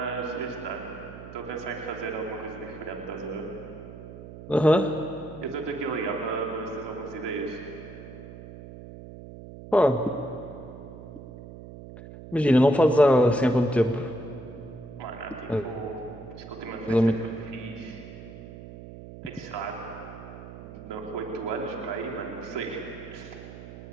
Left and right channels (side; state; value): right; noise; hum, 14 dB below the sound